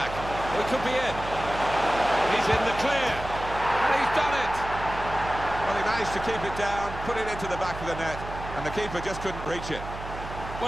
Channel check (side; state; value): right; noise; hum, 10 dB below the sound